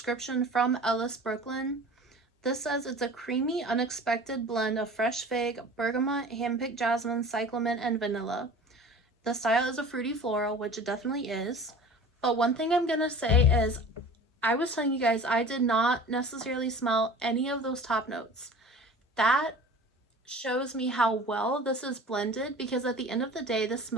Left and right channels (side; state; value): both; normal; correlation 0.41